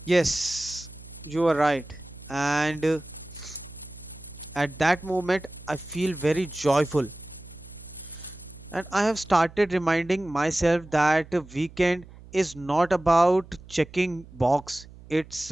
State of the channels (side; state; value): right; noise; hum, 20 dB below the sound